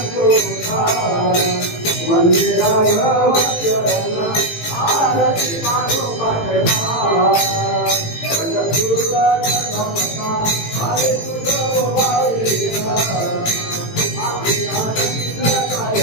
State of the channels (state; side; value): late; right; 18 ms